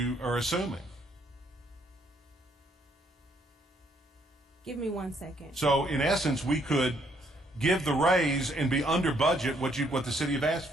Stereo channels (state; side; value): normal; both; correlation 0.69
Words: are assuming. Give me 1 second. So in essence, we could give the raise and be under budget what the city have asked